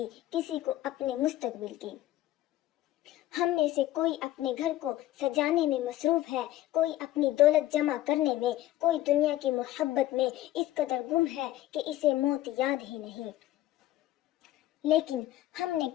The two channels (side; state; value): right; quieter; 14.8 dB